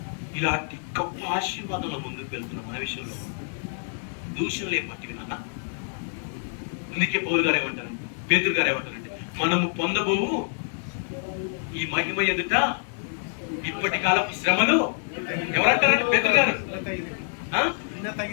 ఇలాంటి గొప్ప ఆశీర్వాదంలో ముందుకు వెళ్తున్నాం. మన విషయంలో దూషణలే పట్టివి నాన్న. అందుకే పౌలు గారు ఏమంటారు, పేతురు గారు ఏమంటారంటే, మనము పొందబోవు ఈ మహిమ ఎదుట ఇప్పటి కాలపు శ్రమలు ఎవరంటారంటే పేతురు గారు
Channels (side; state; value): right; silent; 60 dB below the other